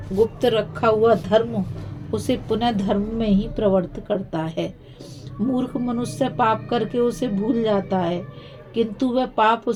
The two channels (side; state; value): both; identical; correlation 1.00